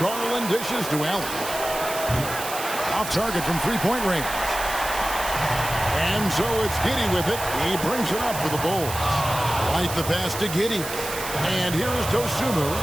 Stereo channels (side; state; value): right; noise; hiss, 8 dB below the sound